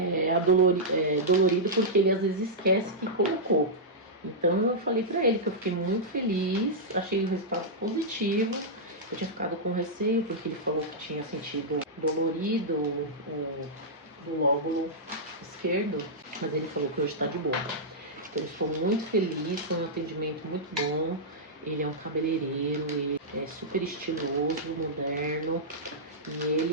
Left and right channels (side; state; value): both; normal; correlation -0.10